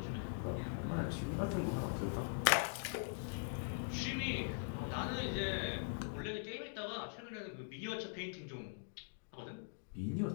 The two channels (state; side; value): silent; right; digital silence